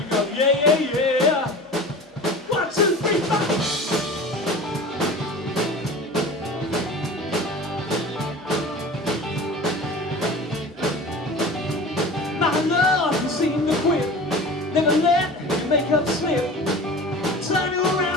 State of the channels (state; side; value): normal; both; correlation 0.37